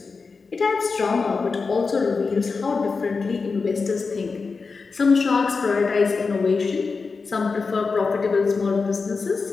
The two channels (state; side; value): quieter; right; 4.6 dB